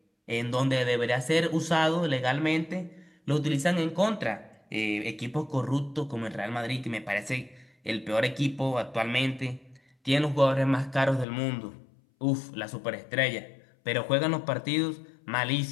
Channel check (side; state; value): right; drops out; at 11.2 s